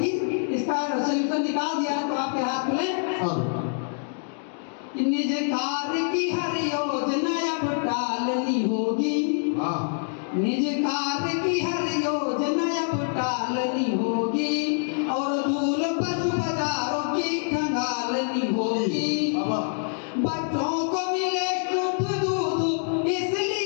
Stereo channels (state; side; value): silent; right; 59 dB below the other